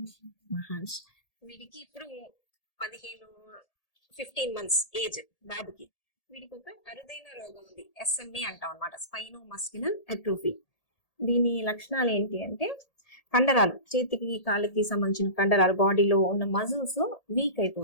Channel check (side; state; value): right; late; 1.8 ms